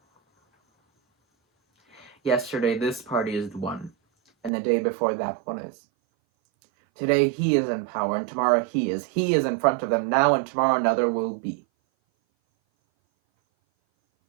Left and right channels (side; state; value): left; drops out; at 4.5 s